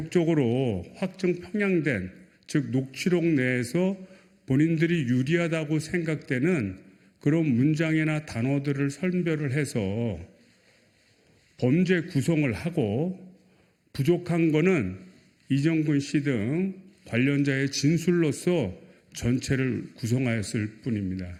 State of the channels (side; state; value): both; identical; correlation 1.00